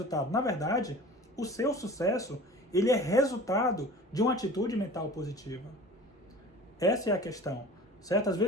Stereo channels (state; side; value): normal; both; correlation 0.40